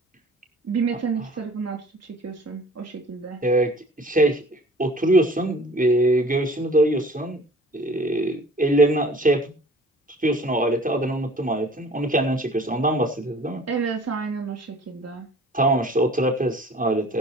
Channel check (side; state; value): both; normal; correlation 0.49